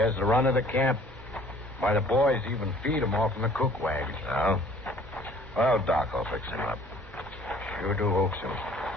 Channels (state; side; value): noise; right; hum, 21 dB below the sound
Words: the run of the camp. Why, the boys even feed him off in the cook wagon. Oh? Well, Doc, I'll fix him up. Sure do hope so.